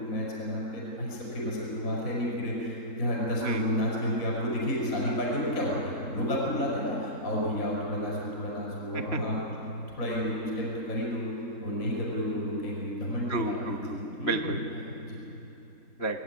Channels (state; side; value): late; right; 3.7 ms